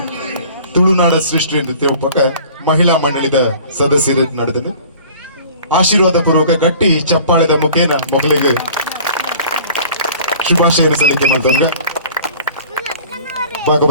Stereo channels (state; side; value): inverted; both; correlation -0.47